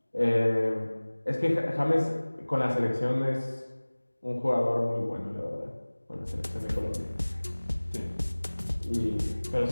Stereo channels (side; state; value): both; inverted; correlation -1.00